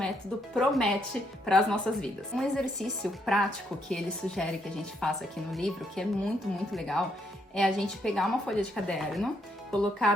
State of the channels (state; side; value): normal; both; correlation 0.74